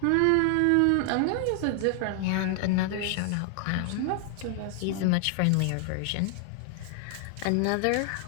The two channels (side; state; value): both; different; correlation 0.00